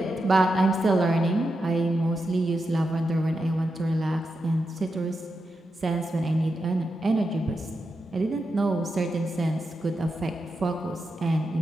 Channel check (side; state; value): both; normal; correlation 0.87